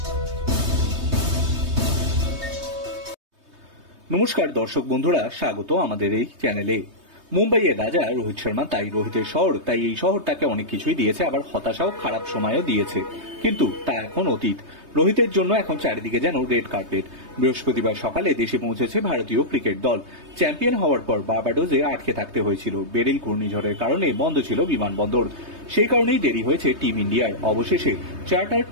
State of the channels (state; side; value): late; left; 3.2 ms